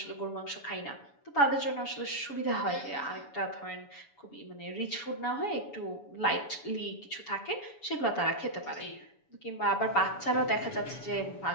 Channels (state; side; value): late; right; 7.1 ms